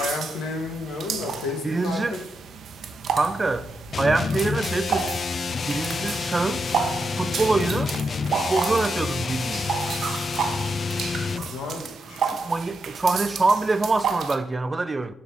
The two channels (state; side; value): normal; both; correlation 0.85